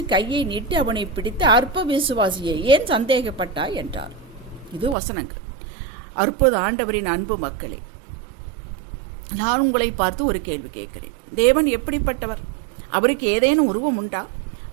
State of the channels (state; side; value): drops out; left; at 5.0 s